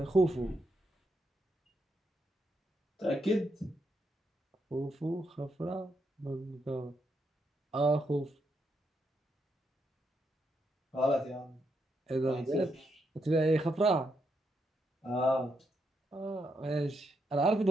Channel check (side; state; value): both; normal; correlation 0.80